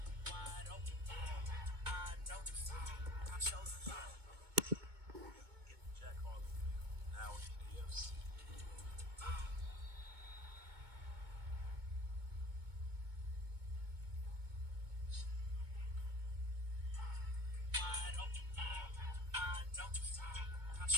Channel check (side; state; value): left; late; 2.2 ms